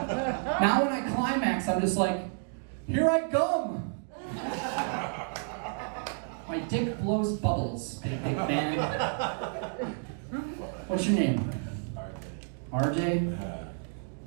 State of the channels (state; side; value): silent; left; 57 dB below the other